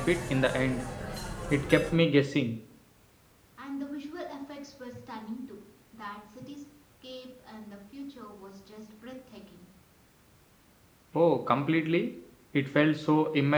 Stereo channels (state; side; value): identical; both; correlation 1.00